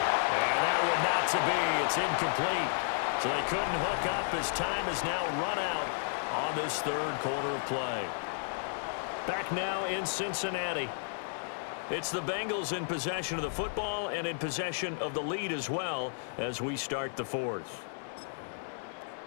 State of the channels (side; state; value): right; silent; 56 dB below the other